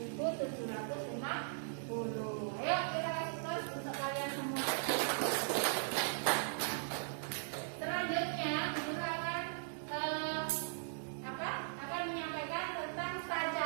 Ayo kita kasih terus untuk kalian semua. Selanjutnya, Guru akan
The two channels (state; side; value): silent; left; digital silence